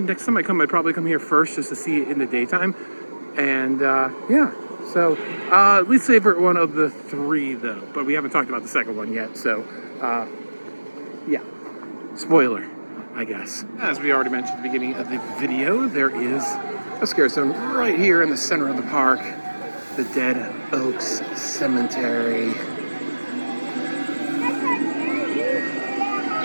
next time I come, I'd probably come here first just to see it in the daytime. And yeah, so least favorite one of the 3 though, but we haven't talked about the second one yet. So yeah, spoiler, I guess. As we already mentioned at the beginning of the video, there is a scare zone right here in the center of the park, the Dead Oaks Cemetery.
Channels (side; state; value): both; inverted; correlation -1.00